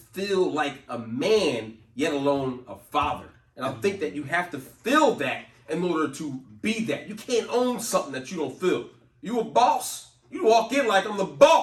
like a man, yet alone a father. And I think that you have to feel that in order to be that. You can't own something that you don't feel. You a boss. You walk in like I'm the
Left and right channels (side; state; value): both; identical; correlation 1.00